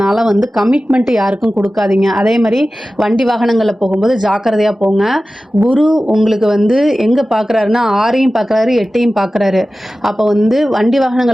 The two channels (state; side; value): normal; both; correlation 0.95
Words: கமிட்மெண்ட் யாருக்கும் கொடுக்காதீங்க. அதே மாதிரி வண்டி வாகனங்களில் போகும்போது ஜாக்கிரதையாக போங்க. குரு உங்களுக்கு எங்கே பார்க்குறாருன்னா 6ஐயும் பார்க்குறாரு, 8ஐயும் பார்க்குறாரு. அப்போ வண்டி